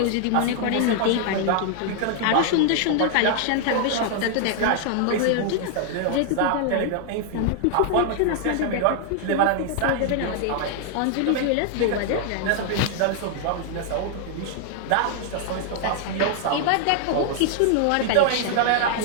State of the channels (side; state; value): both; different; correlation 0.00